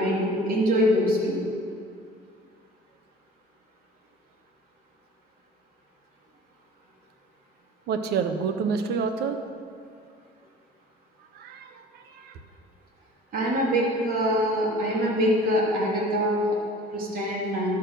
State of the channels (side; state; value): both; normal; correlation 0.43